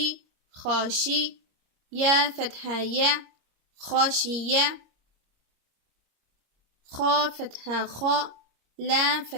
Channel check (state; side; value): late; left; 25 ms